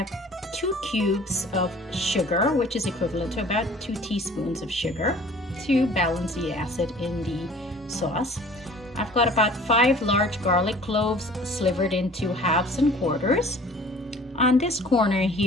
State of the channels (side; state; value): both; normal; correlation 0.49